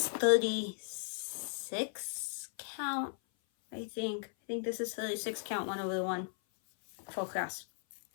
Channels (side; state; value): right; silent; 54 dB below the other